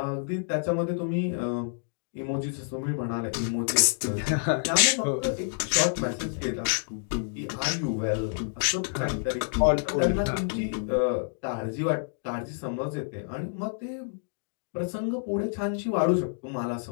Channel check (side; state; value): right; silent; digital silence